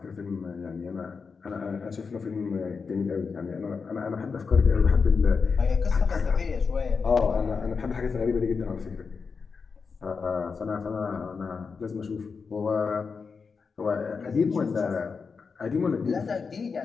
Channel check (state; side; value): quieter; right; 5.2 dB